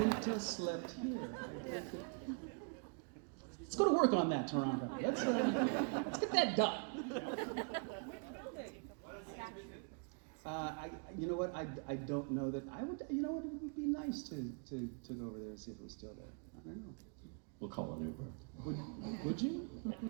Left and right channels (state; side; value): quieter; left; 38.4 dB